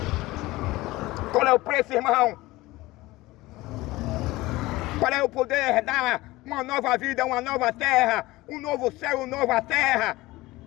Qual é o preço, irmão? Para eu poder dar uma nova vida, uma nova terra, um novo céu, uma nova terra,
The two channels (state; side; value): quieter; right; 19.3 dB